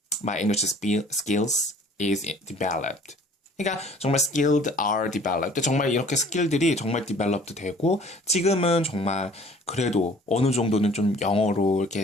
my English skills is developed. 그러니까 정말 skilled are developed. 정말 이렇게 스킬들이 정말 developed 되고 지금은 정말 그래도 어느 정도는 좀 영어로 이렇게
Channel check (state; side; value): normal; both; correlation 0.52